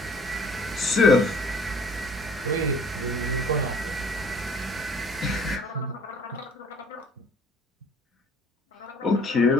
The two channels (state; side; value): normal; both; correlation 0.53